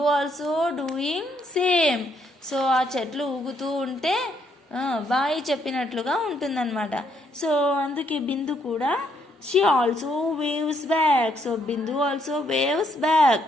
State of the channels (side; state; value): both; normal; correlation 0.72